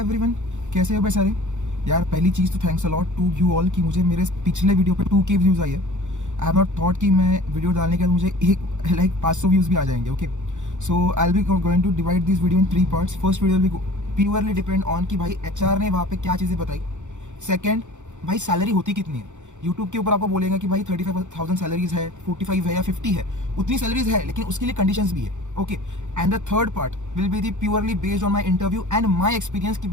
कैसे हो भाई सारे। यार पहली चीज़ तो thanks a lot to you all कि मुझे मेरे पिछले वीडियो पे 2K व्यूज़ आई है। आई हैव नॉट थॉट कि मैं वीडियो डालने के बाद मुझे एक लाइक 500 व्यूज़ भी आ जाएंगे। Okay, so I will be going to divide this video in 3 parts. First video will be purely depend on कि भाई HR ने वहाँ पे क्या चीज़ें बताई। सेकेंड, भाई सैलरी होती कितनी है। यूट्यूब के ऊपर आपको बोलेगा कि भाई 35,000 सैलरीज है, 45 है या 50 है, उतनी सैलरीज है, लेकिन उसके लिए कंडीशंस भी है। Okay, and the third part will be the purely based on my interview and my experience कि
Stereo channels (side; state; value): left; late; 0.85 ms